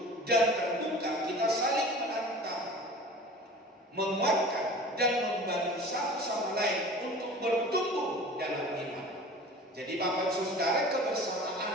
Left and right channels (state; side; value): normal; both; correlation 0.41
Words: dan terbuka, kita saling menantang, menguatkan dan membantu satu sama lain untuk bertumbuh dalam iman. Jadi Bapak Ibu Saudara,